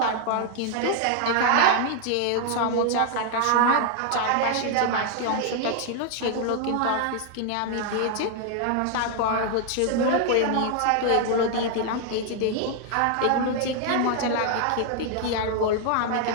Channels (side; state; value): both; different; correlation 0.00